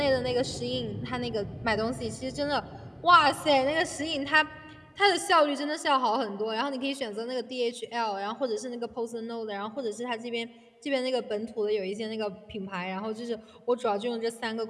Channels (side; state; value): both; identical; correlation 1.00